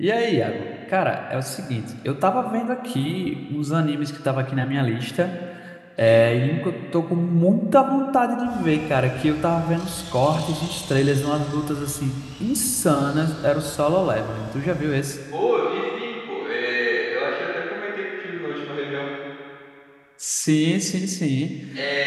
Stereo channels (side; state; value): both; identical; correlation 1.00